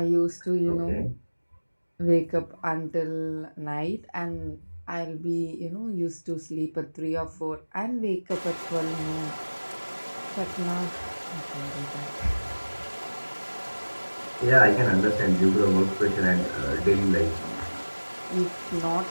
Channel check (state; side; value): inverted; both; correlation -1.00